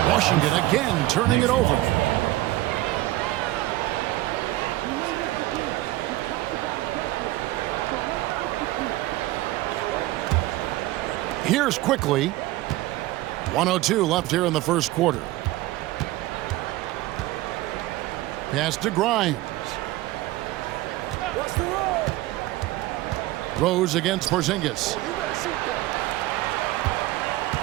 Washington again turning it over. Here's quickly. 1:02 left here in the first quarter. Pass to Grimes. Rose against Porzingis.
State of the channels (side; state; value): left; quieter; 17.5 dB